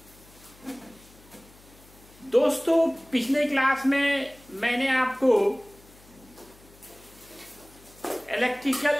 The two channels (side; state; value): left; noise; hum, 25 dB below the sound